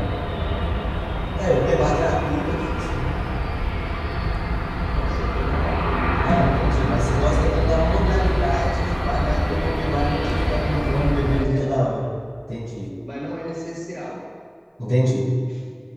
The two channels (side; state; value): both; identical; correlation 1.00